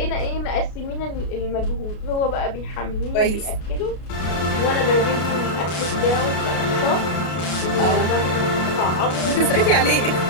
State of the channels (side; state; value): right; late; 33 ms